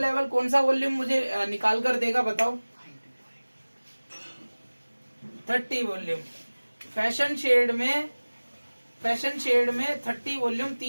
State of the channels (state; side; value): inverted; both; correlation -1.00